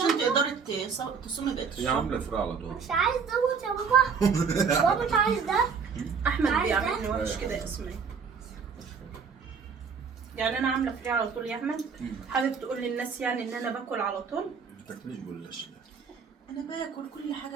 ده. تقدري تصومي بقيه هي الشهر. عامله فراغ على طول. مش عايز دوت يا بابا. بابا مش عايز ده. احمد عايزة؟ بيعمل لي وحش كده يا اسماء. يعني انا عامله فري على طول يا احمد. حابب تقول للناس يعني ان انا باكل على طول؟ ما تاكليش جلاش. انا باكل كل حاجه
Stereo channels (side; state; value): left; quieter; 5.9 dB